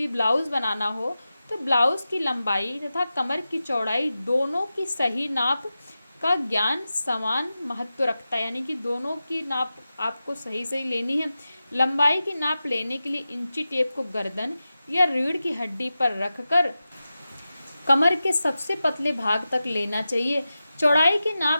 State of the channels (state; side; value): inverted; both; correlation -0.93